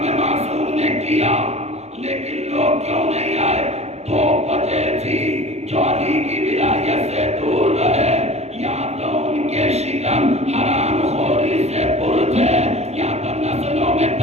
معصوم نے کیا، لیکن لوگ کیوں نہیں آئے؟ 2 وجہ تھی جو علی کی ولایت سے دور رہے، یا تو ان کے شکم حرام خوری سے پر تھے، یا تو نسلوں میں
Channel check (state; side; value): late; left; 0.31 ms